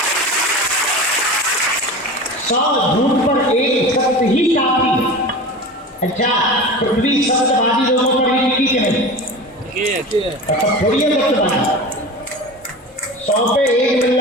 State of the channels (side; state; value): both; normal; correlation 0.32